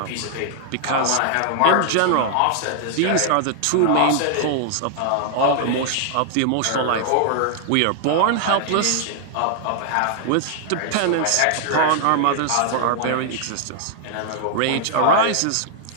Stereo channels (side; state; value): both; different; correlation -0.01